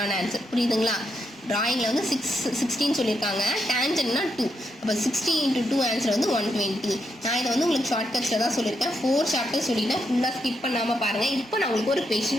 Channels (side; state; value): both; normal; correlation 0.81